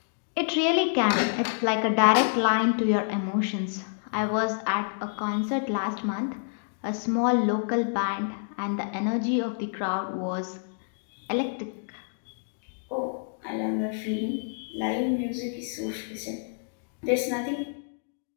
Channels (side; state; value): right; silent; digital silence